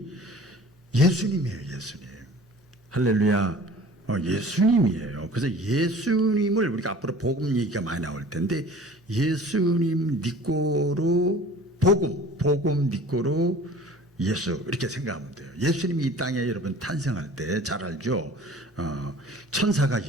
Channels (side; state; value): both; normal; correlation 0.45